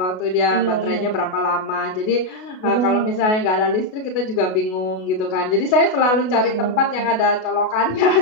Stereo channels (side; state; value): right; late; 33 ms